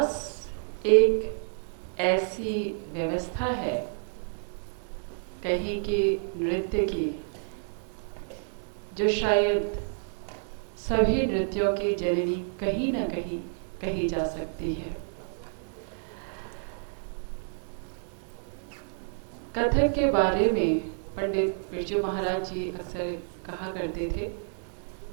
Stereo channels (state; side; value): silent; left; 58 dB below the other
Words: एक ऐसी व्यवस्था है कहीं की नृत्य की जो शायद सभी नृत्यों की जननी कहीं ना कहीं कही जा सकती है। कथक के बारे में पंडित बिरजू महाराज जी अक्सर कहा करते थे,